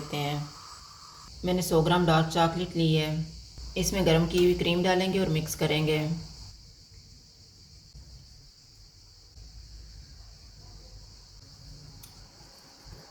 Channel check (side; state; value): both; identical; correlation 1.00